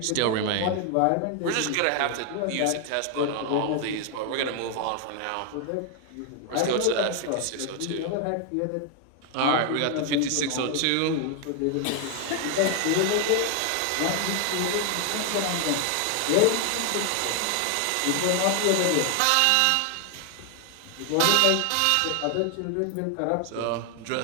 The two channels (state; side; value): different; both; correlation 0.00